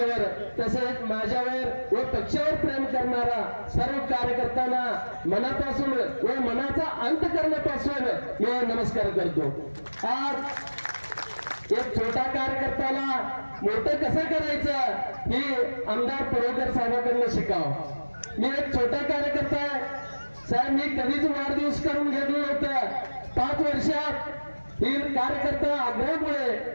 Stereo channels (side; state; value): both; inverted; correlation -1.00